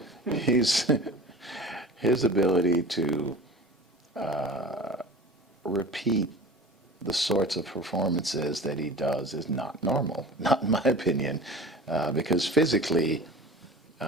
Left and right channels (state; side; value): normal; both; correlation 0.38